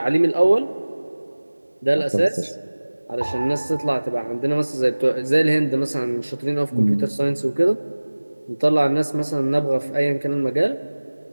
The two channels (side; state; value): both; inverted; correlation -1.00